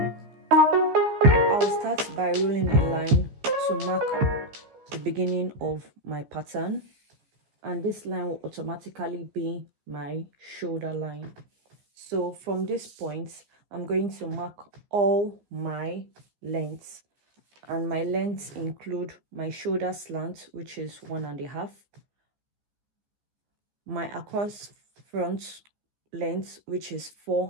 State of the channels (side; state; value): left; late; 15 ms